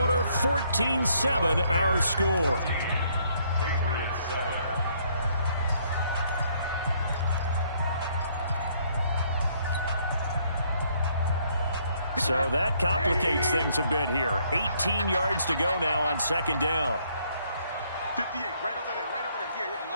14-7 our score. Patriots 7. So that complicates things a bit here. 18 yards to go now on second down. 58, right over there, right over there. Yeah.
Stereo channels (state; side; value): inverted; both; correlation -0.67